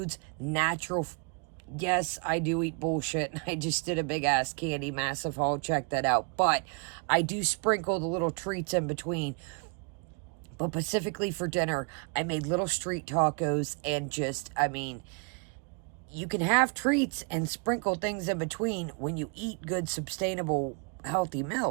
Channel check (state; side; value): quieter; left; 36.7 dB